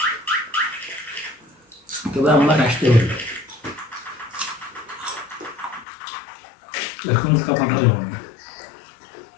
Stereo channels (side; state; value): right; drops out; at 5.9 s